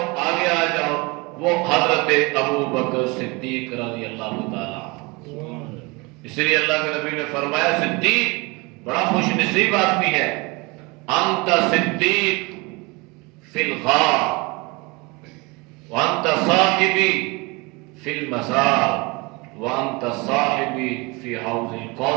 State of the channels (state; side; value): quieter; left; 26.5 dB